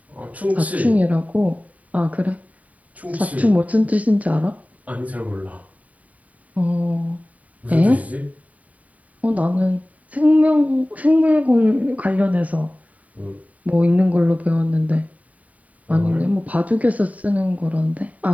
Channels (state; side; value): late; left; 0.070 ms